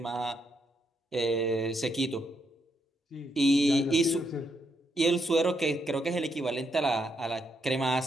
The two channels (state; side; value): normal; both; correlation 0.78